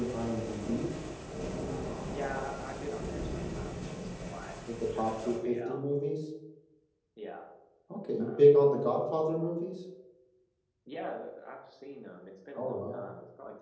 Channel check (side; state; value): both; identical; correlation 1.00